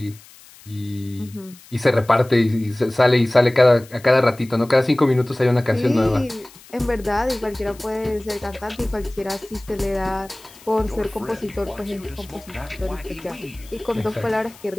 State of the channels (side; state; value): left; noise; hiss, 23 dB below the sound